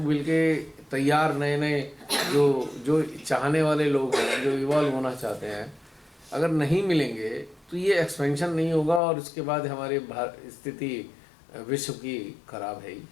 मिलके तैयार नए नए जो चाहने वाले लोग हैं, जो इवॉल्व होना चाहते हैं, अगर नहीं मिलेंगे तो ये एक्सपेंशन नहीं होगा और उसके बाद हमारी स्थिति विश्व की खराब है ही।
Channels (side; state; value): right; drops out; at 9.0 s